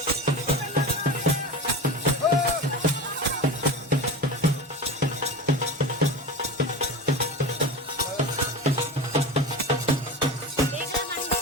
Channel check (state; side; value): normal; both; correlation 0.28